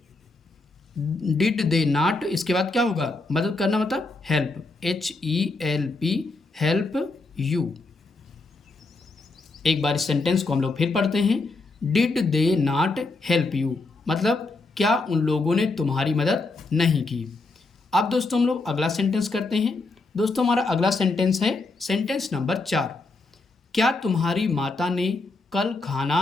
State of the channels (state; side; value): quieter; right; 3.5 dB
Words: डिड दे नाट। इसके बाद क्या होगा, मदद करना मतलब हेल्प, HELP, हेल्प यू। एक बार इस सेंटेंस को हम लोग फिर पढ़ते हैं, did they not help you, मतलब क्या उन लोगों ने तुम्हारी मदद नहीं की। अब दोस्तों हम लोग अगला सेंटेंस करते हैं। दोस्तों हमारा अगला सेंटेंस है सेंटेंस नंबर 4, क्या तुम्हारी माता ने कल